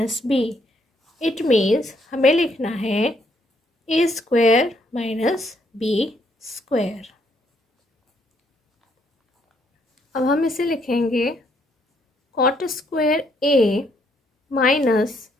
b. It means हमें लिखना है a square minus b square. अब हम इसे लिखेंगे cot square a minus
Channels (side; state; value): both; normal; correlation 0.71